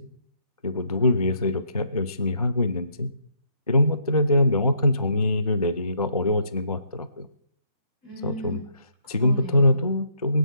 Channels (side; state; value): both; inverted; correlation -0.71